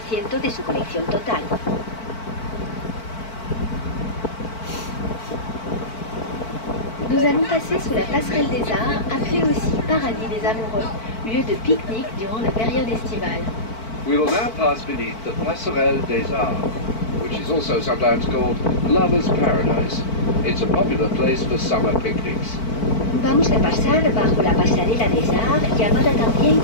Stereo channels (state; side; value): late; right; 4.5 ms